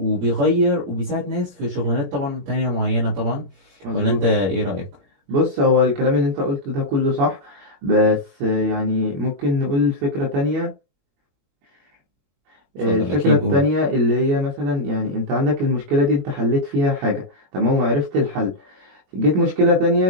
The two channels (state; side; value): late; left; 21 ms